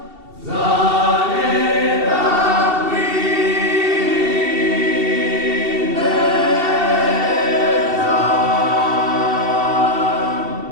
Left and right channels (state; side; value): late; left; 2.7 ms